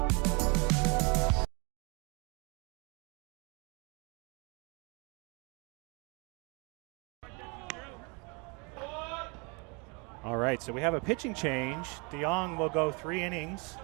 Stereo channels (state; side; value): quieter; left; 31.0 dB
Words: All right, so we have a pitching change. DeYoung will go 3 innings.